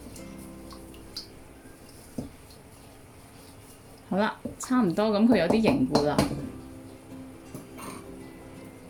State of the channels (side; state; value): both; identical; correlation 1.00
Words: 好啦，差唔多，咁佢有啲凝固啦。